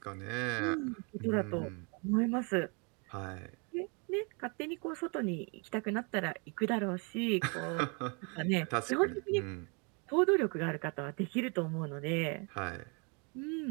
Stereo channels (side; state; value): left; quieter; 34.2 dB